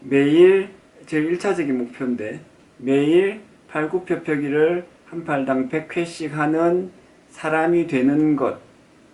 매일 제 1차적인 목표인데 매일 팔굽혀펴기를 한 팔당 100회씩 하는 사람이 되는 것,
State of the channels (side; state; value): both; identical; correlation 1.00